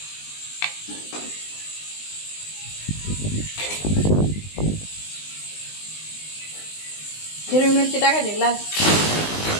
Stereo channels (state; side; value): late; right; 19 ms